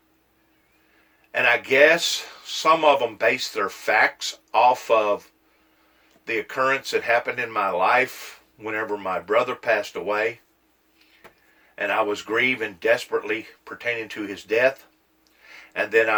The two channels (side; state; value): both; identical; correlation 1.00